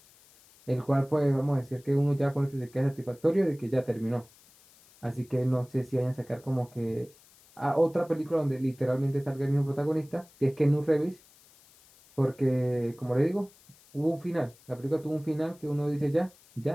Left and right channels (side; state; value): left; noise; hiss, 27 dB below the sound